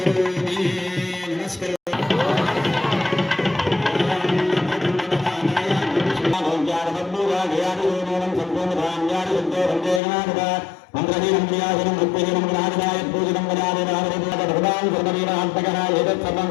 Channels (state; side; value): drops out; right; at 10.0 s